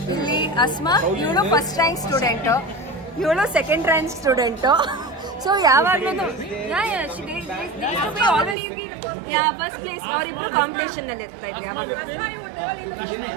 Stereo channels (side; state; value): left; drops out; at 8.6 s